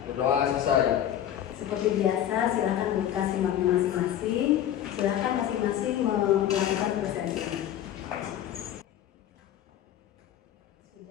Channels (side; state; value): right; quieter; 11.0 dB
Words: Berdoa selesai. Seperti biasa, silakan buka simak masing-masing. Silakan masing-masing melakukan presentasi.